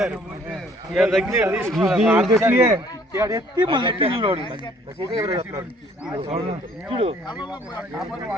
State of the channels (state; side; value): normal; both; correlation 0.60